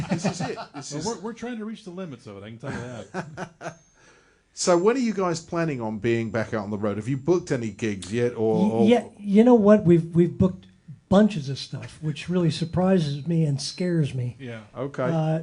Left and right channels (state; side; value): identical; both; correlation 1.00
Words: This is it. We're trying to reach the limits of it. I can tell you that. So, when are you guys planning on being back out on the road? Have you booked any gigs yet? Or Yeah, you know what? We've booked bunches of stuff, which really surprises me and scares me. Yeah.